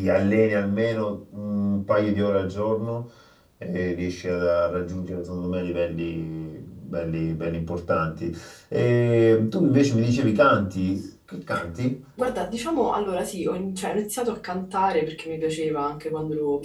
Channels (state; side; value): identical; both; correlation 1.00